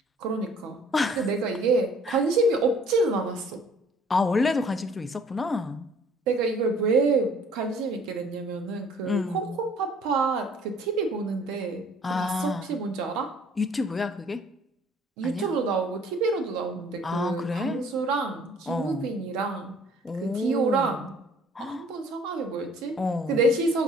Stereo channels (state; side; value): normal; both; correlation 0.56